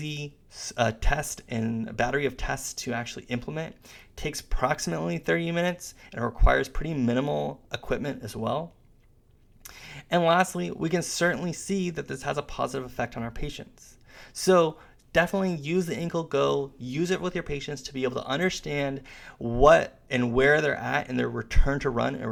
test and a battery of tests to actually implement. It takes approximately 30 minutes and it requires pretty minimal equipment as well. And lastly, we can certainly see that this has a positive effect on our patients. So definitely use the Ankle Go, use it with your patients to be able to understand what and where they're at in their return to run and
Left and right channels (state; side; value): identical; both; correlation 1.00